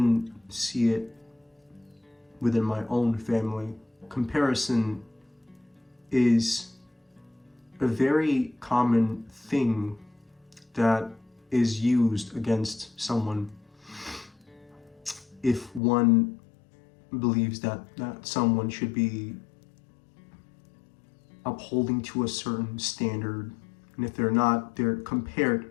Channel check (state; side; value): drops out; right; at 15.8 s